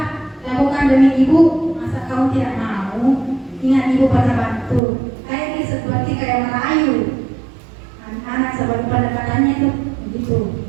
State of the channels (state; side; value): drops out; left; at 4.8 s